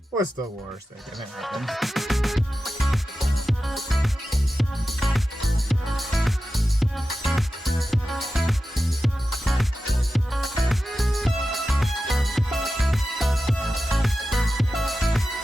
What's the worst that can happen?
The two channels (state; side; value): normal; both; correlation 0.93